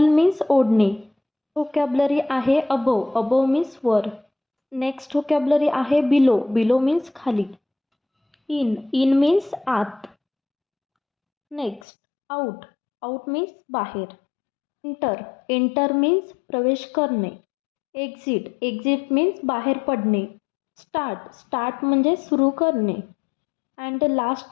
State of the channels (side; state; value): right; drops out; at 11.8 s